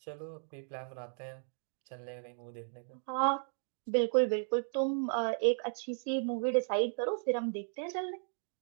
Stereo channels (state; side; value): silent; left; digital silence